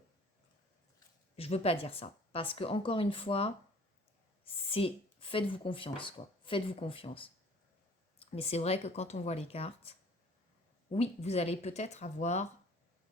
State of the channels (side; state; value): both; normal; correlation 0.52